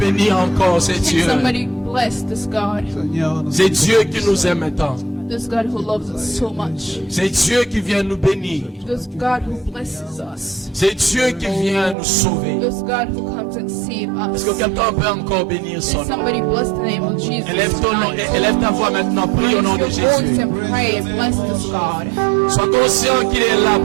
encore ces Can dieux? somebody bless this God? Seigneur, nous C'est Dieu qui nous aime tant. This God who loves us so much. C'est Dieu qui vient nous bénir. This God who blesses us. C'est Dieu qui vient nous sauver. This God who comes and saves Est-ce que us. quelqu'un peut encore bénir son Can nom? somebody bless the name of Jesus Élève ton nom, tonight? élève ta voix maintenant, prie au nom de Raise your voice Jésus. and pray and bless this God. Sois conscient qu'il est là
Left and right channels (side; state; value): left; drops out; at 12.0 s